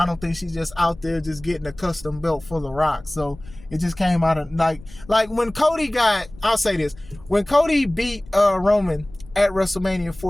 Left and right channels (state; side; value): noise; left; rumble, 20 dB below the sound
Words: don't think she's just out there just getting a custom belt for The Rock. So it just came out of like when Cody I'll say this, when Cody beat Roman at WrestleMania